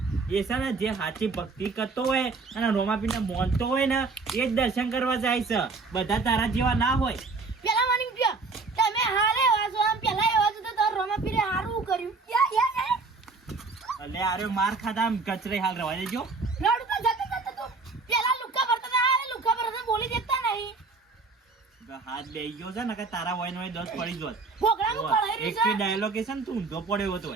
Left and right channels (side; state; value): left; quieter; 4.1 dB